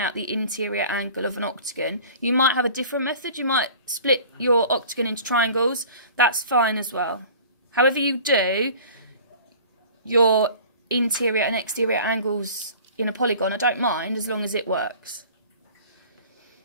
the interior angle of an octagon. You might have a different method. You might split your octagon into triangles. That's fine as well. However you do your interior and exterior angles in a polygon, I don't mind as long as it works.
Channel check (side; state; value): both; inverted; correlation -0.44